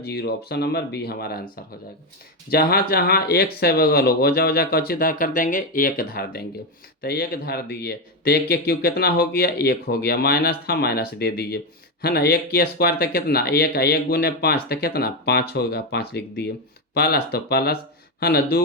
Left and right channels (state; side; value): normal; both; correlation 0.09